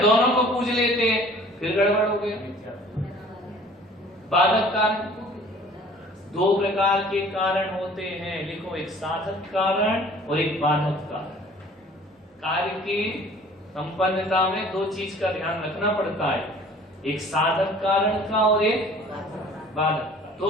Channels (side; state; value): both; normal; correlation 0.50